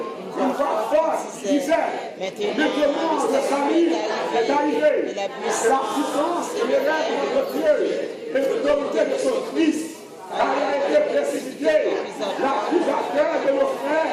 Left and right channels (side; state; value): both; identical; correlation 1.00